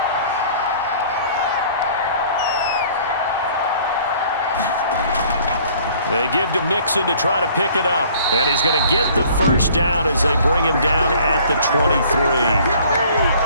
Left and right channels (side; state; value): both; inverted; correlation -0.54